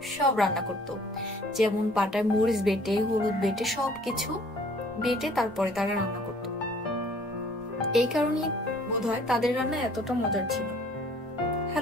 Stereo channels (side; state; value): both; normal; correlation 0.56